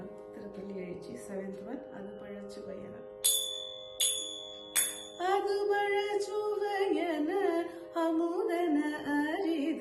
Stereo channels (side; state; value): both; identical; correlation 1.00